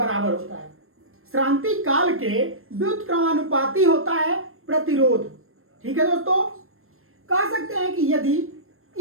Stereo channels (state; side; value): late; left; 0.62 ms